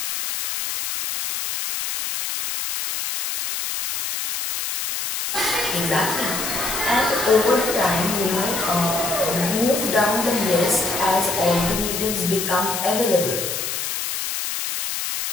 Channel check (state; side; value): noise; left; hiss, 3 dB below the sound